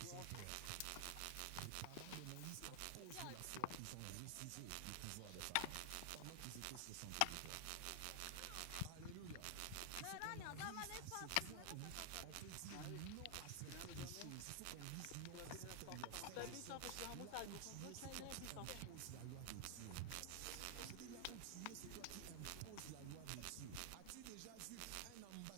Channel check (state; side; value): different; both; correlation 0.00